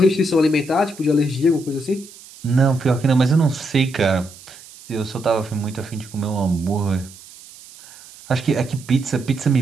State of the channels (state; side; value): noise; right; hiss, 20 dB below the sound